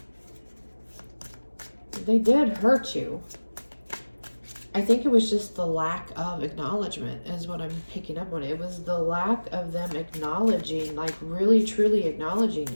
they did hurt you. I think it was just the lack of acknowledgement is what I'm picking up on. It was the lack of them acknowledging, like really truly acknowledging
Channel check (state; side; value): inverted; both; correlation -1.00